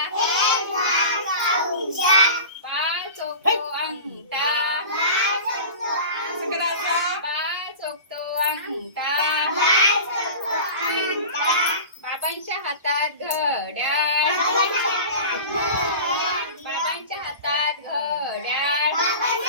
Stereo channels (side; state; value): both; inverted; correlation -0.35